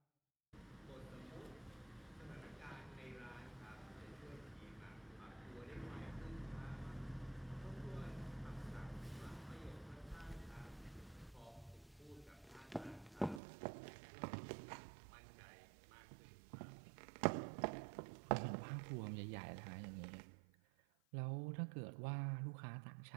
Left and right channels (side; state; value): left; drops out; at 13.4 s